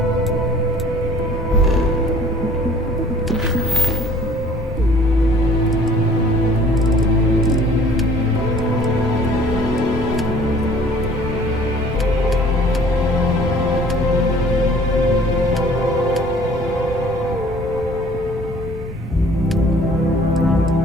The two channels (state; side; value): normal; both; correlation 0.52